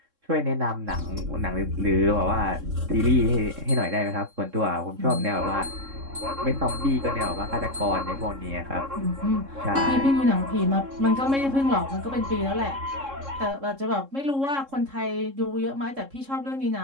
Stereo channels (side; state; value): left; late; 3.7 ms